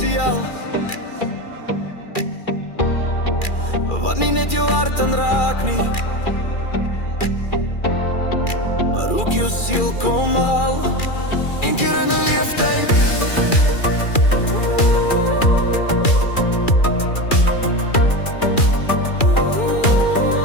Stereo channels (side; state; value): right; late; 2.4 ms